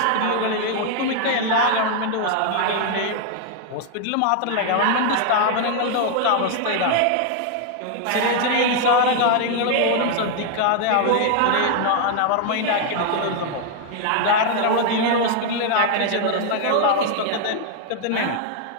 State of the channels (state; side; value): different; both; correlation 0.00